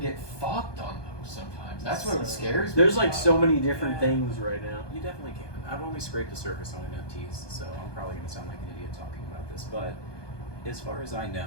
get fucked on those sometimes. That's what scares me. There's like so many different things right now. You definitely can. I've only scraped the surface on NFTs, so I'm probably going to sound like an idiot talking about this. But as far as I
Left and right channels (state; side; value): late; right; 1.2 ms